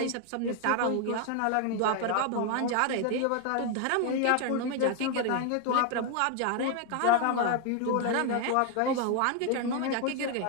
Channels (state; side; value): different; both; correlation 0.01